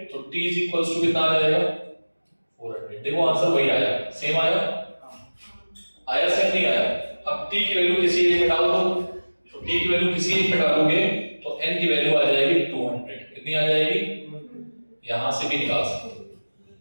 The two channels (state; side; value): inverted; both; correlation -1.00